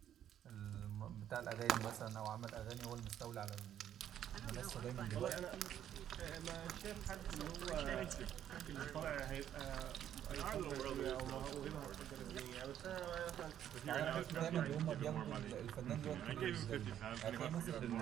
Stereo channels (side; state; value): left; quieter; 10.5 dB